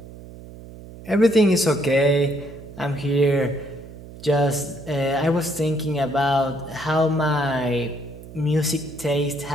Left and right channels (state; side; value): noise; right; hum, 16 dB below the sound